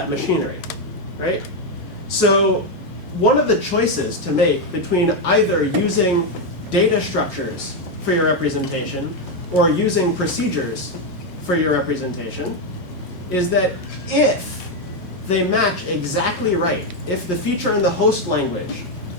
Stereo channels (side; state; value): both; normal; correlation 0.04